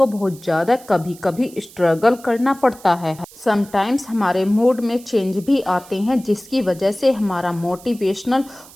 बहुत ज़्यादा कभी कभी स्ट्रगल करना पड़ता है। समटाइम्स हमारे मूड में चेंज भी आते हैं, जिसकी वजह से हमारा मोटिवेशनल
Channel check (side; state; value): right; noise; hiss, 21 dB below the sound